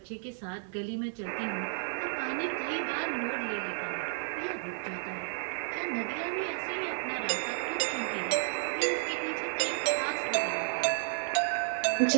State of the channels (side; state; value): left; silent; digital silence